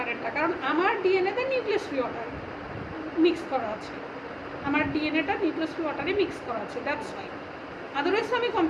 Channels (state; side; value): identical; both; correlation 1.00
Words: কারণ আমার ডিএনএতে নিউক্লিয়াস ফ্রি ওয়াটার মিক্স করা আছে, আমার ডিএনএটা নিউক্লিয়াস ফ্রি ওয়াটারে মিক্স করা আছে, দ্যাটস ওয়াই। আদারওয়াইজ আমি